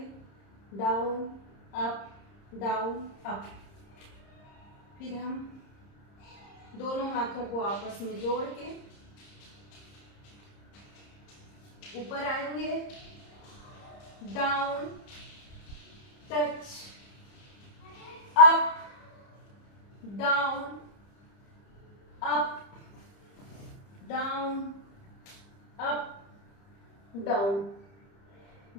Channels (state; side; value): late; right; 30 ms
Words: डाउन अप। फिर हम दोनों हाथों को आपस में जोड़ के ऊपर आएंगे, down touch up down up down up down.